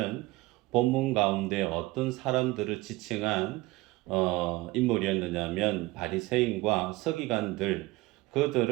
본문 가운데 어떤 사람들을 지칭한 인물이었느냐면 바리새인과 서기관들,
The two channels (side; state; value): left; quieter; 20.6 dB